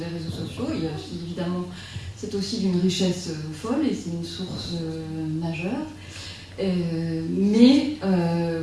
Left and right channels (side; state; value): both; identical; correlation 1.00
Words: réseaux sociaux. Il y a aussi, évidemment, c'est aussi d'une richesse folle et c'est une source majeure. Mais